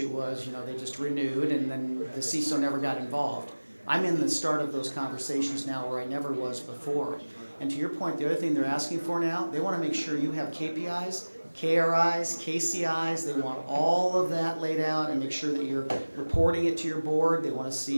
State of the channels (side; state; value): both; inverted; correlation -1.00